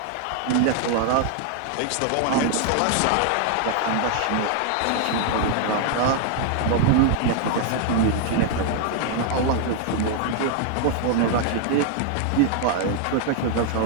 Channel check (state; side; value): different; both; correlation 0.00